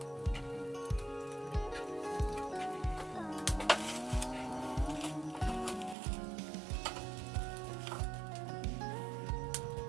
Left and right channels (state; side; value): drops out; left; at 6.0 s